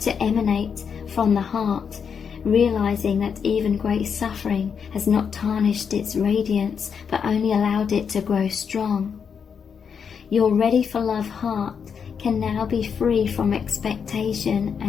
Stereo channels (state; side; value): quieter; right; 6.7 dB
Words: emanate from the heart, realizing that even great suffering has not tarnished its radiance, but only allowed it to grow strong. Your ready for love heart can now be free from expectation